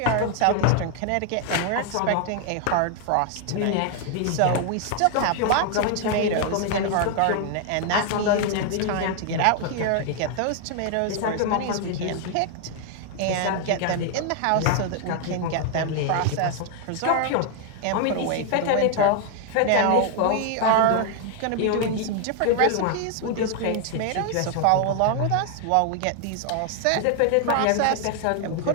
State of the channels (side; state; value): both; different; correlation 0.00